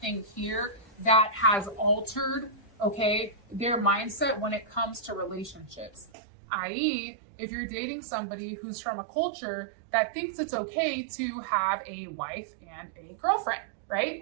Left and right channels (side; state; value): left; drops out; at 6.1 s